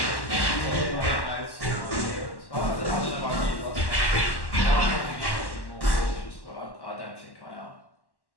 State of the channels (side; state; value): right; late; 1.1 ms